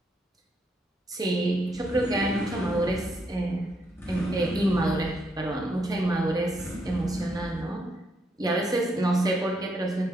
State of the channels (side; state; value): both; normal; correlation 0.76